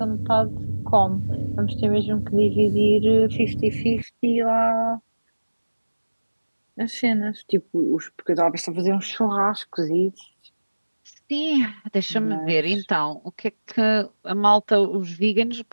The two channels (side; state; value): both; inverted; correlation -1.00